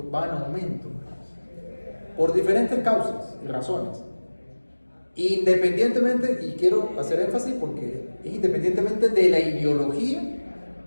va en aumento. por diferentes causas y razones. Independientemente, y quiero hacer énfasis porque es independientemente de la ideología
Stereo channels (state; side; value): inverted; both; correlation -1.00